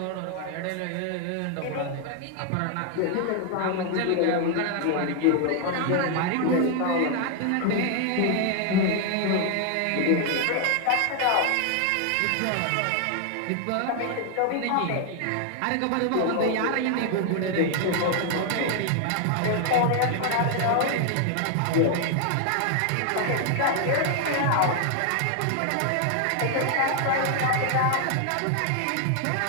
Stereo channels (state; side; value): different; both; correlation 0.00